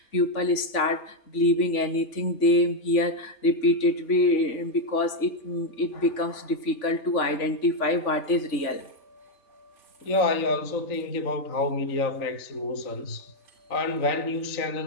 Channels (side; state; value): right; late; 3.5 ms